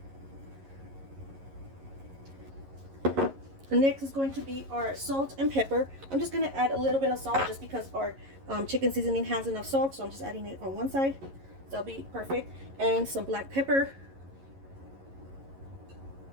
And next is going to be our salt and pepper. I'm just going to add a little bit of salt just because our chicken seasoning has enough salt, so I'm just adding it on one side. That'll be perfect. And some black pepper.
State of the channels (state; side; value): late; left; 11 ms